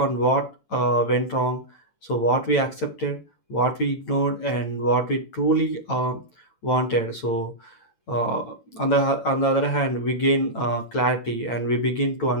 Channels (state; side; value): late; right; 9.0 ms